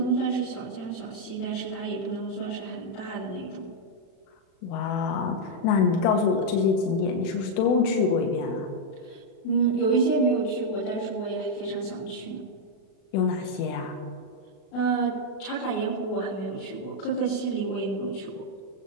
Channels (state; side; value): late; right; 36 ms